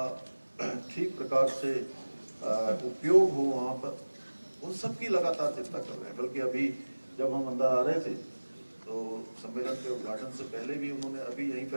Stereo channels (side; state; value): both; inverted; correlation -1.00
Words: ठीक प्रकार से उपयोग हो वहाँ पर, उन सब की लगातार चिंता कर रहे हैं। बल्कि अभी जब हम अंदर आ रहे थे तो सम्मेलन के उद्घाटन से पहले भी उन्होंने अभी यहीं